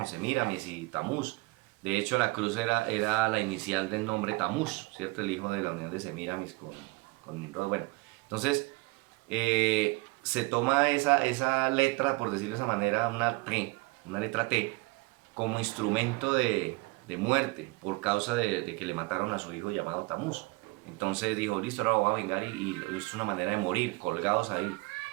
Semíramis y Tamuz. De hecho, la cruz era la inicial del nombre Tamuz, ¿cierto? El hijo de la unión de Semíramis con Nimrod. Bueno, entonces se toma esa letra, por decirlo de esa manera, una letra T, como instrumento de muerte por causa de que le mataron a su hijo llamado Tamuz. Entonces dijo, listo, ahora voy a vengar y es una manera de morir, colgados ahí.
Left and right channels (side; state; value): left; quieter; 24.5 dB